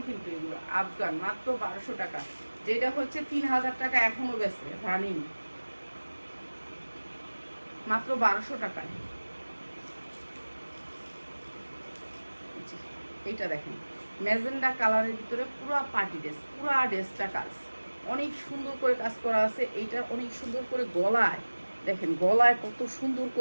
কিন্তু এগুলো আফগান, মাত্র 1200 টাকা। যেটা হচ্ছে 3000 টাকা এখনো বেচে রানিং, মাত্র 1200 টাকায়। এইটা দেখেন, ম্যাজেন্ডা কালারের ভিতরে পুরা পার্টি ড্রেস, পুরা ড্রেসটা কাজ অনেক সুন্দর করে কাজ করা আছে। এইটা অনেক সুন্দর করে গলায় দেখেন, গলায় কত সুন্দর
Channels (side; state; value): both; inverted; correlation -1.00